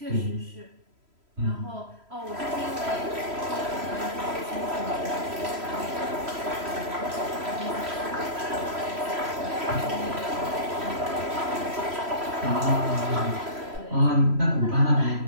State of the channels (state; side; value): late; left; 3.1 ms